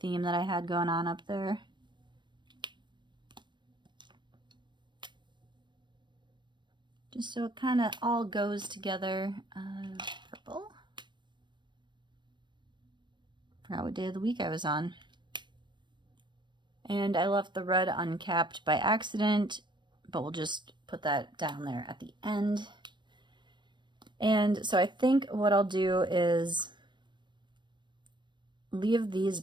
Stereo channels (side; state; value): left; late; 0.22 ms